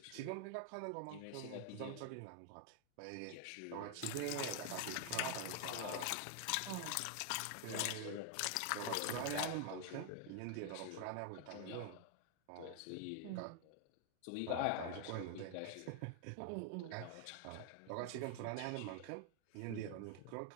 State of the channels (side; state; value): both; different; correlation 0.00